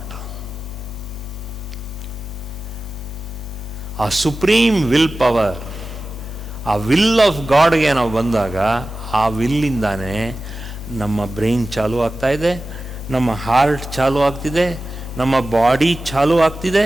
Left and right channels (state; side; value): normal; both; correlation 0.95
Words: A supreme will power, a will of God ಗೆ ನಾವು ಬಂದಾಗ, ಆ ವಿಲ್ಲಿಂದಾನೆ ನಮ್ಮ brain ಚಾಲು ಆಗ್ತಾ ಇದೆ, ನಮ್ಮ heart ಚಾಲು ಆಗ್ತಿದೆ, ನಮ್ಮ ಬಾಡಿ ಚಾಲು ಆಗ್ತಿದೆ.